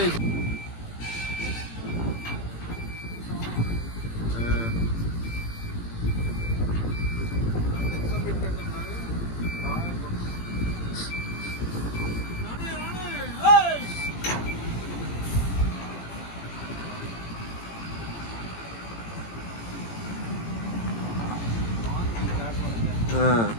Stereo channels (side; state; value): right; late; 18 ms